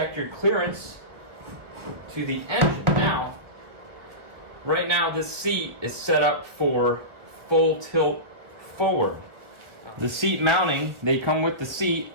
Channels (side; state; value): left; late; 1.2 ms